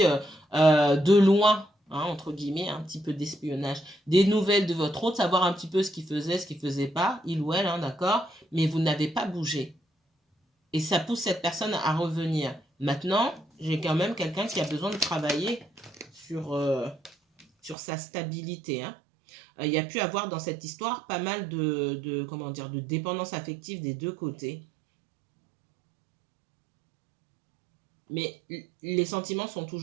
de loin hein, entre guillemets, un petit peu d'espionnage. Des nouvelles de votre hôte, savoir un petit peu ce qu'il faisait, ce qu'il faisait pas, il ou elle, hein, d'accord, mais vous n'avez pas bougé. Et ça pousse cette personne à revenir. Maintenant, j'ai quand même quelqu'un qui a besoin de travailler sur sa stabilité, hein. Il y a pu avoir dans cette histoire pas mal comment dire, de dépendance affective des deux côtés. Mais les sentiments sont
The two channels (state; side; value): drops out; left; at 17.8 s